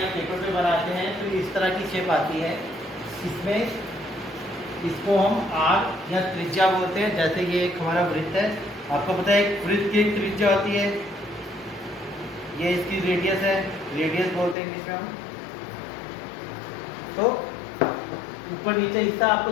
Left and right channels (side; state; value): right; drops out; at 14.6 s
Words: पेपर पे बनाते हैं तो इस तरह की शेप आती है। इसमें इसको हम आर्क या त्रिज्या बोलते हैं। जैसे ये एक हमारा वृत्त है, आपको पता है एक वृत्त की एक त्रिज्या होती है, ये इसकी रेडियस है, रेडियस बोलते हैं इंग्लिश में हम। तो ऊपर नीचे हिस्सा आपको